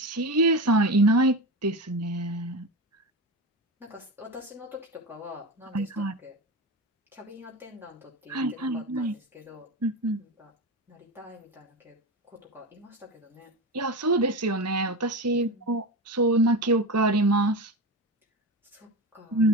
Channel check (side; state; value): both; normal; correlation 0.22